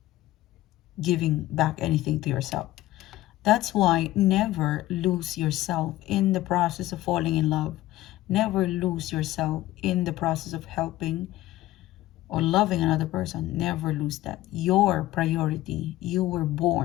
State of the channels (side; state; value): right; quieter; 16.0 dB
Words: giving back anything to yourself. That's why never lose yourself in the process of falling in love. Never lose yourself in the process of helping or loving another person. Never lose that. Your priority. You were